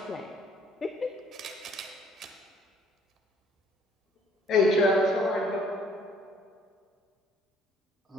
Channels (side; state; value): both; normal; correlation 0.60